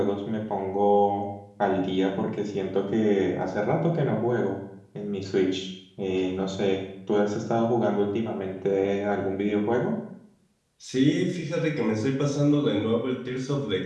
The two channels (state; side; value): identical; both; correlation 1.00